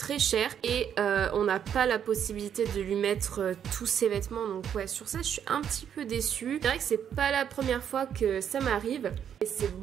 chère et on n'a pas la possibilité de lui mettre tous ses vêtements. Donc ouais, sur ça je suis un petit peu déçue. C'est vrai que c'est pas la première fois que ça m'arrive et c'est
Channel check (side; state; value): left; quieter; 8.8 dB